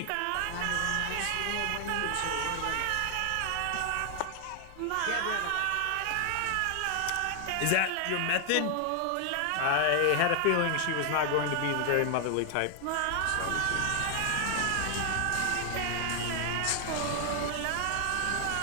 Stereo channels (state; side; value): different; both; correlation 0.00